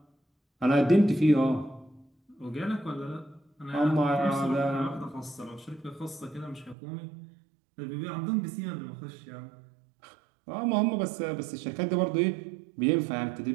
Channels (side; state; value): left; drops out; at 6.8 s